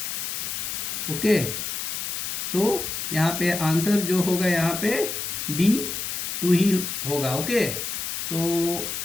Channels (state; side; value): noise; left; hiss, 3 dB below the sound